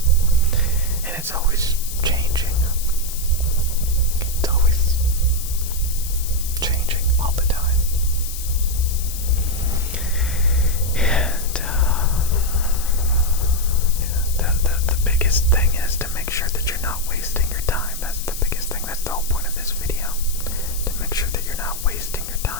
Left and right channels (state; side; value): noise; left; hiss, 9 dB below the sound